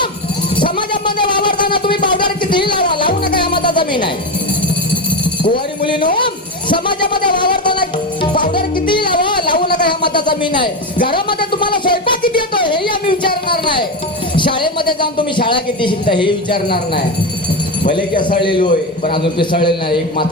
समाजामध्ये वावरताना तुम्ही पावडर कितीही लावा, लावू नका या मता जमीन आहे. कुवारी मुलीनो समाजामध्ये वावरताना पावडर कितीही लावा, लावू नका ह्या मता जमीन आहे. घरामध्ये तुम्हाला स्वयंपाक किती येतो हेही आम्ही विचारणार नाही. शाळेमध्ये जाऊन तुम्ही शाळा किती शिकता हे विचारणार नाही. भले की असळलेलो आहे पण अजून पिसळलेलं नाही. एक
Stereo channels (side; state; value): both; normal; correlation 0.15